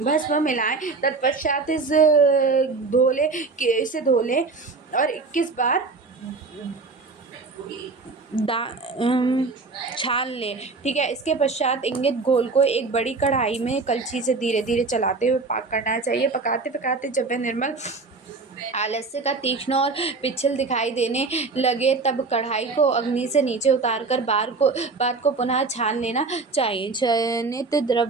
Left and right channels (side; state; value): left; quieter; 4.1 dB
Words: मिलाएं। तत्पश्चात इसे धो लें और 21 बार छान लें। ठीक है। इसके पश्चात इंगित घोल को एक बड़ी कढ़ाई में कलछी से धीरे धीरे चलाते हुए पाक करना चाहिए। पकाते पकाते जब वह निर्मल आलस्य का तीक्ष्ण और पिच्छल दिखाई देने लगे तब कढ़ाई को अग्नि से नीचे उतार कर बाद को पुनः छान लेना चाहिए। चयनित